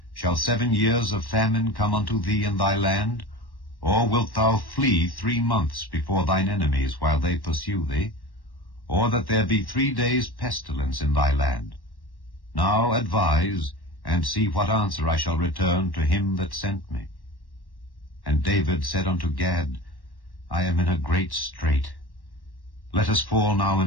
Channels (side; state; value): right; late; 1.1 ms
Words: Shall 7 years of famine come unto thee in thy land? Or wilt thou flee 3 months before thine enemies, while they pursue thee? Or that there be 3 days pestilence in thy land? Now advise, and see what answer I shall return to him that sent me. And David said unto Gad, I am in a great strait. Let us fall now